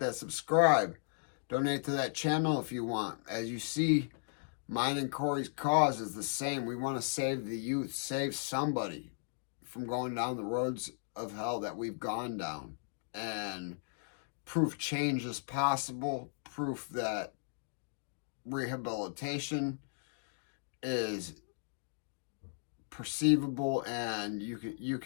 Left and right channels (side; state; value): right; silent; digital silence